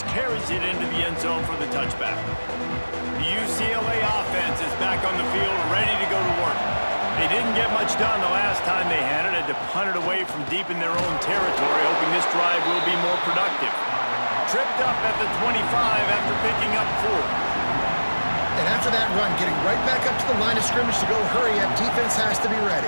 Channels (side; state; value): both; inverted; correlation -1.00